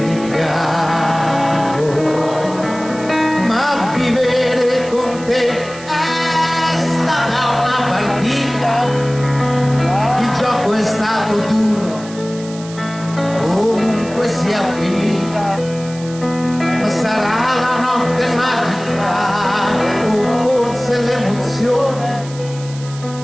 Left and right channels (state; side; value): noise; right; hiss, 17 dB below the sound